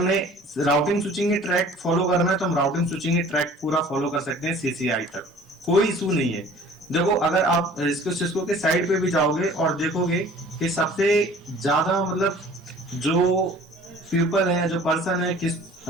राउटिंग स्विचिंग के ट्रैक फॉलो करना है तो हम राउटिंग स्विचिंग के ट्रैक पूरा फॉलो कर सकते हैं सीसीआई तक, कोई इशू नहीं है। देखो अगर आप सिस्को के साइड पे भी जाओगे और देखोगे कि सबसे ज्यादा मतलब जो पीपल है, जो पर्सन है किस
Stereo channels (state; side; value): normal; both; correlation 0.49